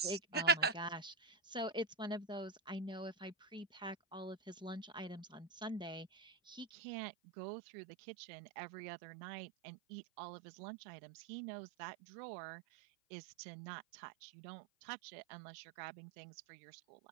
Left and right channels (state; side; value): drops out; left; at 6.7 s